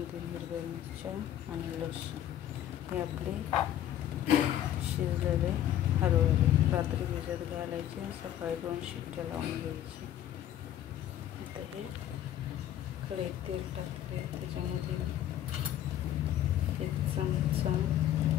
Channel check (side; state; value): right; quieter; 11.6 dB